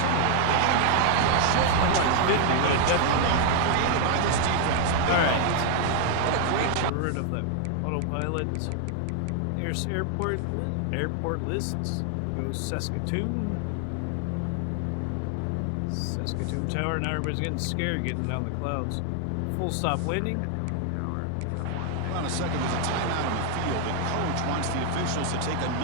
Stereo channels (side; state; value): both; different; correlation 0.00